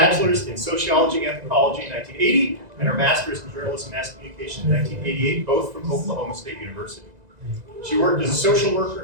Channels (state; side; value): late; left; 1.9 ms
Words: in sociology and anthropology in 1980, and her master's in journalism and mass communication in 1988, both from Oklahoma State University. She worked as a social